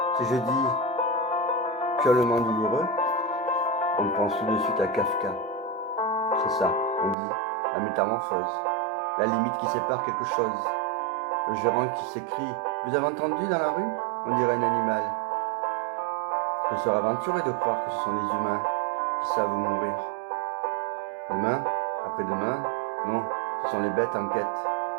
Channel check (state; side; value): drops out; left; at 7.2 s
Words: si je dis purement douloureux, on pense tout de suite à Kafka. C'est ça, on dit la métamorphose, la limite qui sépare quelque chose. Le gérant qui s'écrie « Vous avez entendu dans la rue ?» On dirait un animal. Ce serait aventuré de croire que ce sont les humains qui savent mourir. Demain, après-demain, non, ce sont les bêtes en quête